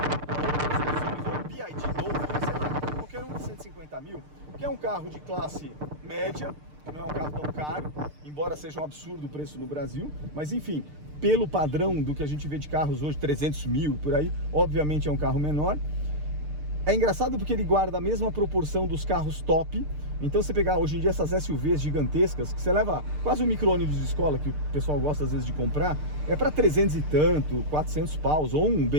ou outras opções, ou BYD Dolphin, sei lá, qualquer um de 150 mil, que é um carro de classe média, que não é um carro tão caro, embora seja um absurdo o preço no Brasil, mas enfim, pelo padrão do que a gente vê de carros hoje, 300 mil por aí, obviamente é um carro menor. É engraçado porque ele guarda a mesma proporção dos carros top. Então você pegar hoje em dia essas SUVs gigantescas, que você leva quase um micro-ônibus de escola, que o pessoal gosta às vezes de comprar, é para 300 e tanto, 400 paus, ou um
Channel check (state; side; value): late; left; 6.7 ms